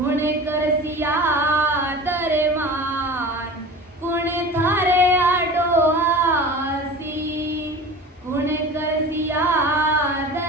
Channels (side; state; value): both; normal; correlation 0.36